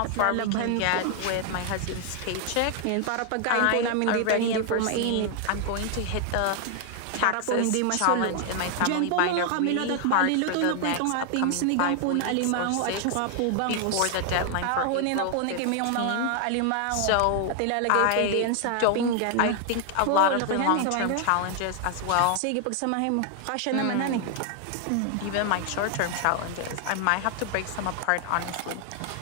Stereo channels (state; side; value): different; both; correlation 0.00